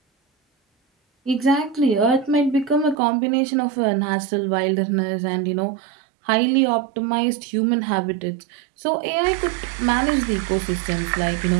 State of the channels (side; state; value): left; drops out; at 3.0 s